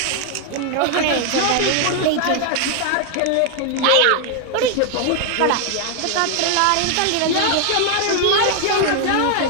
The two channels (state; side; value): different; both; correlation 0.00